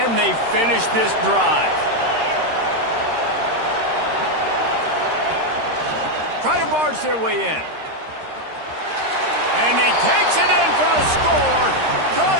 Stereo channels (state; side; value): late; left; 13 ms